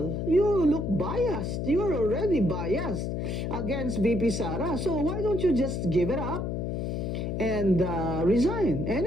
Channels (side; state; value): left; noise; hum, 2 dB below the sound